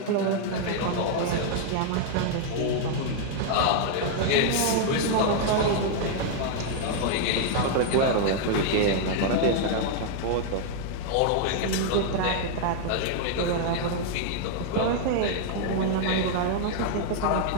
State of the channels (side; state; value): both; different; correlation 0.00